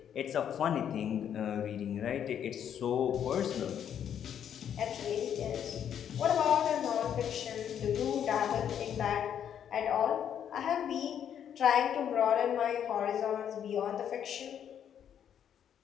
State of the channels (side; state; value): right; quieter; 9.1 dB